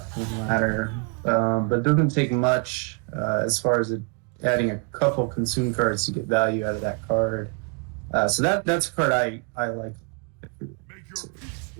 in the ladder, but doesn't take much as far as adding a couple consume cards to get value out of that card. So that's a card I like. It's a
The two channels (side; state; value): left; quieter; 34.9 dB